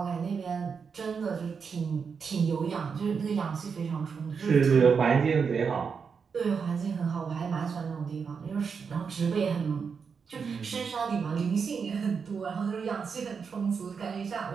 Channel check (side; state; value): left; quieter; 5.9 dB